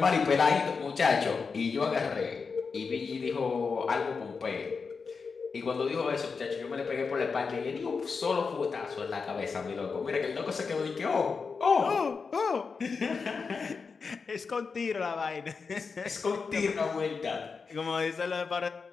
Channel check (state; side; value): quieter; right; 5.1 dB